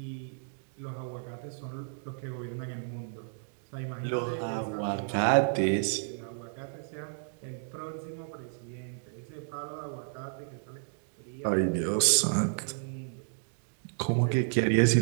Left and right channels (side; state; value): left; silent; digital silence